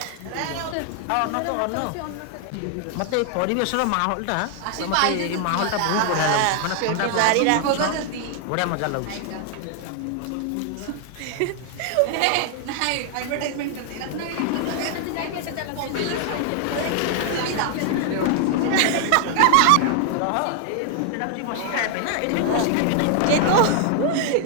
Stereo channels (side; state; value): both; different; correlation 0.00